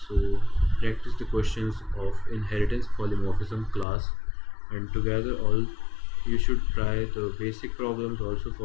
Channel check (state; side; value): drops out; right; at 3.9 s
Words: So practice the questions of inheritance polymorphism class, and together all you should try the basic problems also